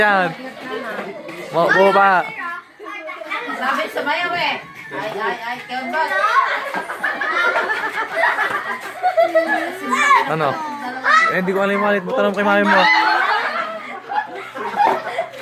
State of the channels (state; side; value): identical; both; correlation 1.00